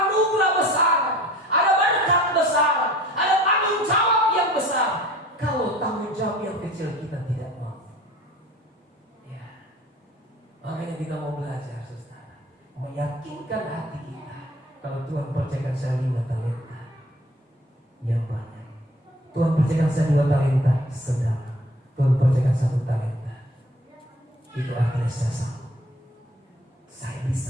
anugerah besar, ada berkat besar, ada tanggung jawab yang besar. Kalau tanggung jawab yang kecil kita tidak mau. Ya. Makanya kita mau belajar, saudara, meyakinkan hati kita. Kalau Tuhan percayakan saya 5 talenta yang banyak, Tuhan percayakan saya 2 talenta sedang, Tuhan percayakan 1 talenta, itu artinya saya sanggup, saya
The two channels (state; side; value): normal; both; correlation 0.48